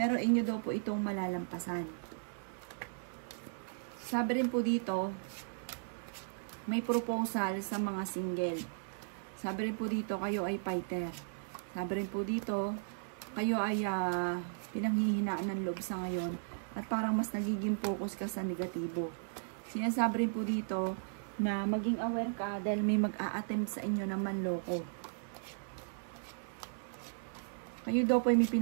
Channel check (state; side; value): silent; left; 54 dB below the other